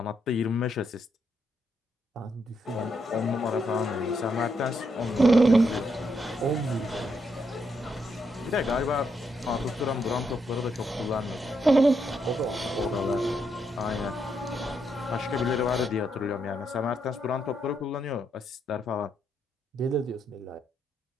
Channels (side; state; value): both; normal; correlation 0.79